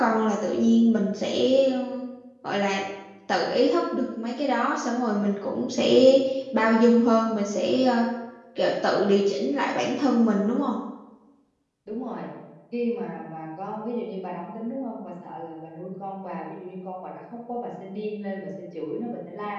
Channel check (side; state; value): both; identical; correlation 1.00